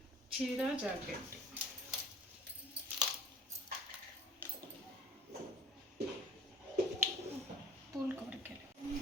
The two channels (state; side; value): normal; both; correlation 0.48